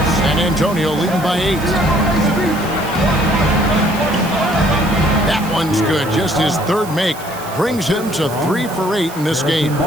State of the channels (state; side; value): noise; right; hiss, 16 dB below the sound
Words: Antonio leading by 8. That one's good. Just his 3rd make. Brings him to 3 for 8 in this game.